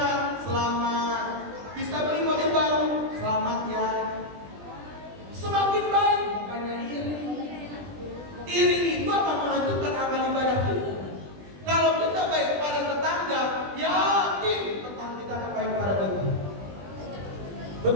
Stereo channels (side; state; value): left; late; 20 ms